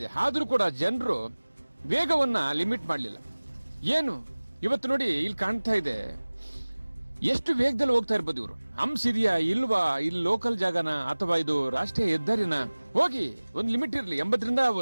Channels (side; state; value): both; inverted; correlation -1.00